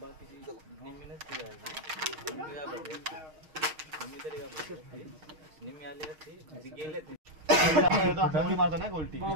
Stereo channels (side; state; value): left; late; 6.5 ms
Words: मारतो ना गोल्टी